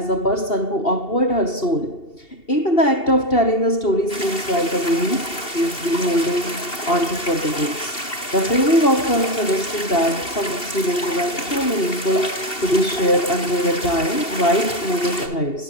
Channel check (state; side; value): late; right; 2.7 ms